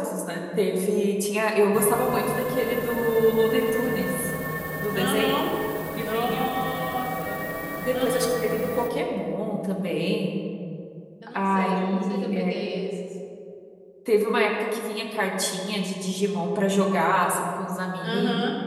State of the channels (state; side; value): identical; both; correlation 1.00